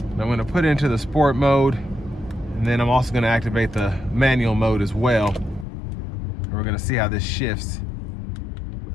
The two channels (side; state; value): right; drops out; at 5.7 s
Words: And I'm gonna put it into the sport mode, and then I'm also gonna activate the manual mode as well. And we're gonna see how this shifts.